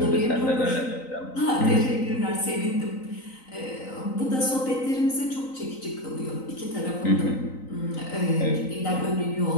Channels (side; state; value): right; late; 3.9 ms